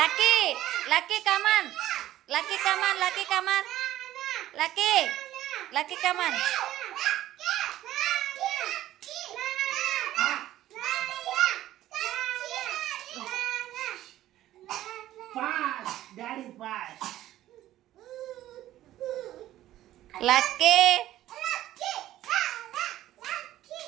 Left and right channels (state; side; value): quieter; left; 13.9 dB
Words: లక్కీ లక్కీ కమాన్ లక్కీ కమాన్ లక్కీ కమాన్ లక్కీ లక్కీ కమాన్. లక్కీ